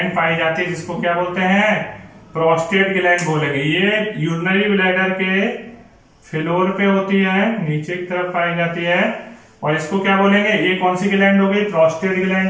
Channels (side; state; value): both; identical; correlation 1.00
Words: पाई जाती है जिसको क्या बोलते हैं, प्रोस्टेट ग्लैंड बोलेंगे। ये यूरिनरी ब्लैडर के फ्लोर पे होती है, नीचे की तरफ पाई जाती है, और इसको क्या बोलेंगे, ये कौन सी ग्लैंड हो गई, प्रोस्टेट